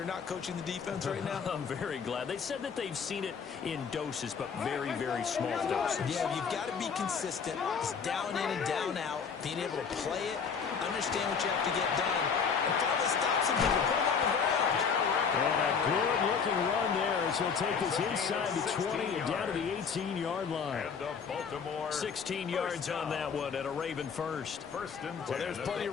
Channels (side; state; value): right; quieter; 6.2 dB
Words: not coaching the defense right now? I'm very glad. They said that they've seen it in doses, but very, very small doses. Yeah, you've got to be consistent. It's down in and down out. Being able to play it, understand what you have to get done, and finally stop some people, put them on the ground. And a good-looking run there as he'll take us inside the 20 and down to the 18-yard line. 16 yards on that one at a Raven first. Well, there's plenty